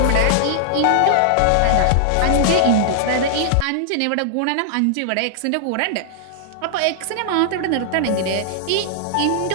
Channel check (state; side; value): different; both; correlation -0.01